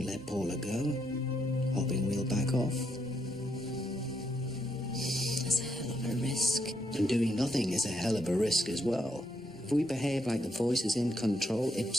let Paula go, hoping we'll back off. risk. And doing nothing is a hell of a risk as well. If we behave like the voice is in control,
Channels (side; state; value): both; normal; correlation 0.78